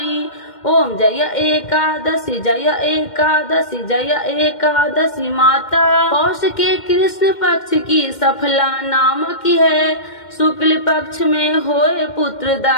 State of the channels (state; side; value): late; right; 2.1 ms